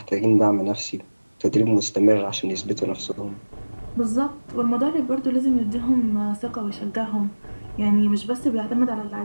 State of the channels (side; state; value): both; inverted; correlation -1.00